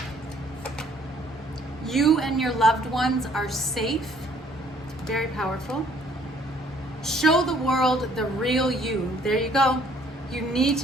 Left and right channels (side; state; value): both; normal; correlation 0.61